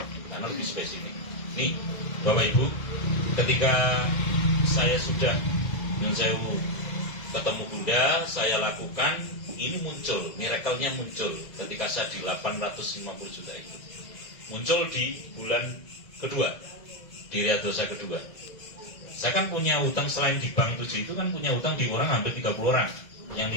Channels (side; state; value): right; late; 2.1 ms